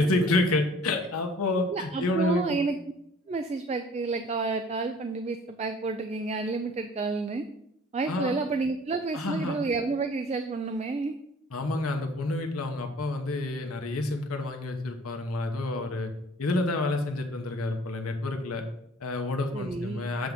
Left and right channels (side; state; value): both; normal; correlation 0.52